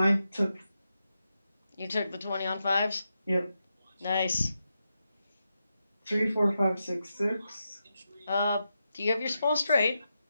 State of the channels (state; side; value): inverted; both; correlation -0.87